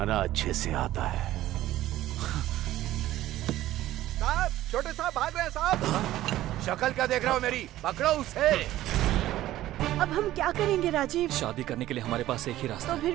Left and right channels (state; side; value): quieter; left; 14.6 dB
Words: अच्छे से आता है। साहब, छोटे साहब भाग रहे हैं साहब। शक्ल क्या देख रहा हो मेरी? पकड़ो उसे। अब हम क्या करेंगे राजीव? शादी करने के लिए हमारे पास एक ही रास्ता तो फिर